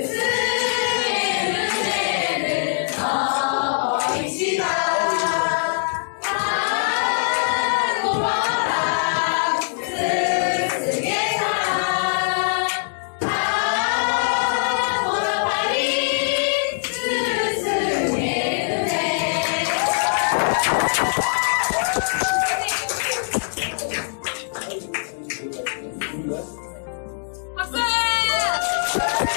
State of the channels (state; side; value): silent; right; digital silence